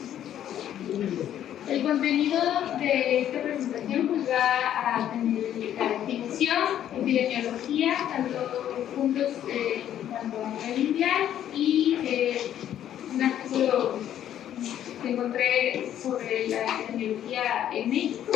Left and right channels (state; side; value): quieter; right; 10.9 dB